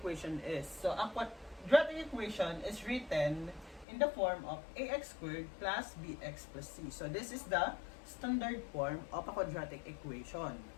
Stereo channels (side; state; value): right; drops out; at 3.9 s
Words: is. So ang quadratic equation is written in the form of ax squared plus bx plus c. So this is the standard form of a quadratic equation.